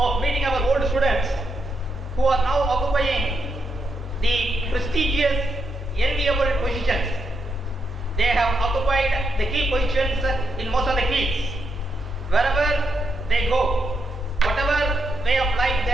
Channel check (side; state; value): both; normal; correlation 0.81